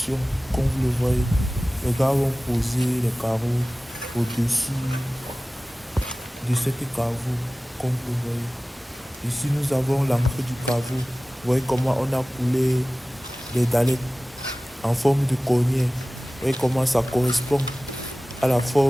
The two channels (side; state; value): both; normal; correlation 0.97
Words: comme vous le voyez. Les gars vont poser les carreaux au-dessus de cette caveau, comme vous le voyez. Ici, nous avons l'entrée du caveau. Vous voyez comment on a coulé les dallettes en forme de cornière. Vous voyez comment ça correspond à la